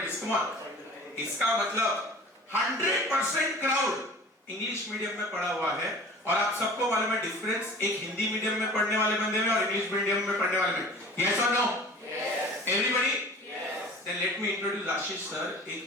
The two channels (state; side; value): normal; both; correlation 0.42